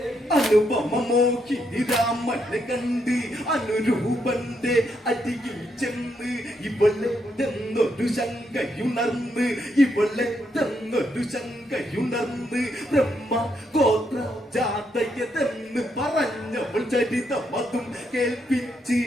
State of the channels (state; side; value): normal; both; correlation 0.78